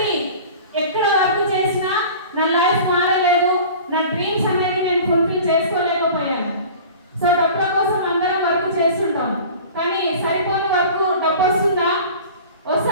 ఎక్కడ వర్క్ చేసినా నా లైఫ్ మారలేదు. నా డ్రీమ్స్ అనేది నేను ఫుల్ఫిల్ చేసుకోలేకపోయాను. సో డబ్బుల కోసం అందరం వర్క్ చేస్తుంటాం, కానీ సరిపోని వర్క్ డబ్బు వస్తుందా?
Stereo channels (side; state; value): both; inverted; correlation -0.40